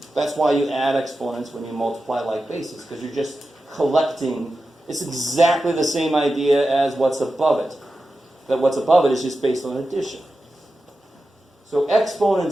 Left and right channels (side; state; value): both; normal; correlation 0.92